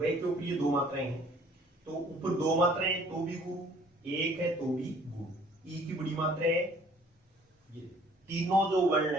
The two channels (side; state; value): both; normal; correlation 0.56